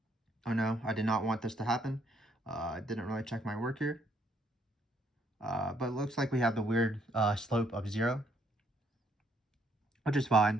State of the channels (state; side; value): normal; both; correlation 0.70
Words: Oh no, I did not want this to happen. I didn't really check my work here. But it looks like we have the weird slope of 0, which is